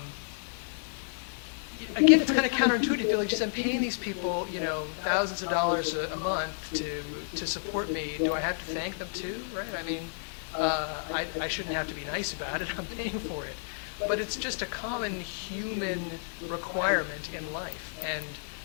Again, it's kind of counterintuitive. You feel like, geez, I'm paying these people, thousands of dollars a month to support me. Do I have to thank them too, right? I mean, I shouldn't have to be nice about it. I'm paying for it. But it's just a common human requirement in life. And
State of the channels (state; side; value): silent; right; 57 dB below the other